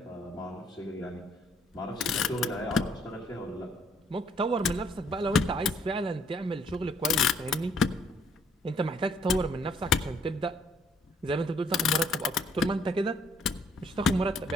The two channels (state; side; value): normal; both; correlation 0.66